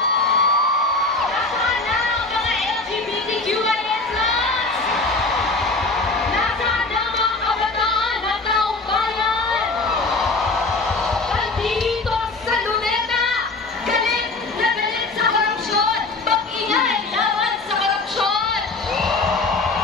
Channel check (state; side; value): quieter; right; 3.4 dB